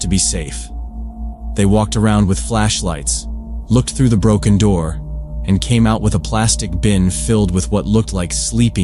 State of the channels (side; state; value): both; identical; correlation 1.00